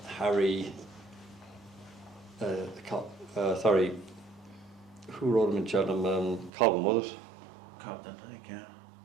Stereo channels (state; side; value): drops out; left; at 6.5 s